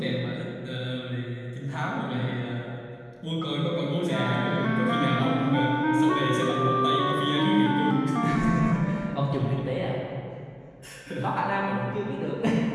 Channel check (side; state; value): both; identical; correlation 1.00